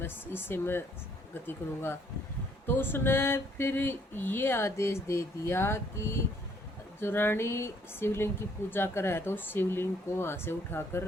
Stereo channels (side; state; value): both; normal; correlation 0.65